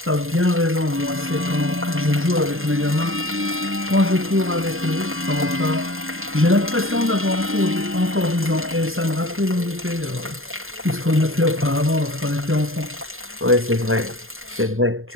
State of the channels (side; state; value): left; late; 0.60 ms